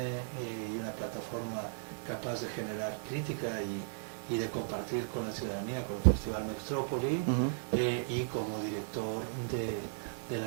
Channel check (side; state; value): left; silent; 54 dB below the other